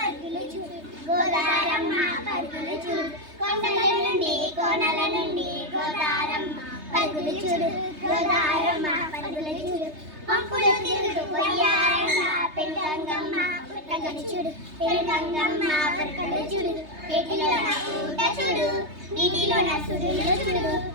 చూడు. గోదారమ్మ పరుగులు చూడు. కొండలనుండి కోనల నుండి గోదారమ్మ పరుగులు చూడు. గోదారమ్మ పరుగులు చూడు. పంపులు తిరుగుతూ పోయారమ్మ పెళ్ళంగమ్మ పరుగులు చూడు. పెళ్ళంగమ్మ పరుగులు చూడు. ఏటిలోన ఊట చూడు. నీటిలోన సుడులు చూడు.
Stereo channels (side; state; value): left; late; 3.3 ms